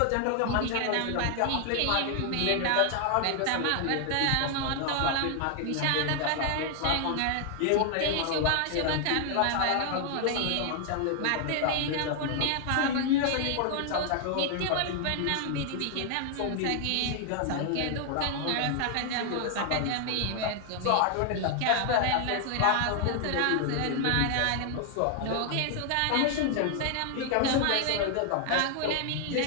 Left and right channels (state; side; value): different; both; correlation 0.00